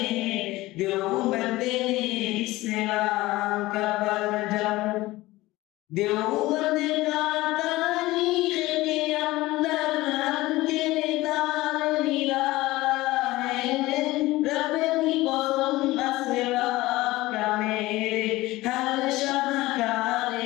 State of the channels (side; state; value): right; quieter; 18.7 dB